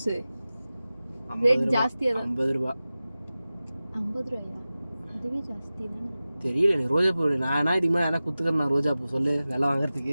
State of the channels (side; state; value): both; inverted; correlation -0.96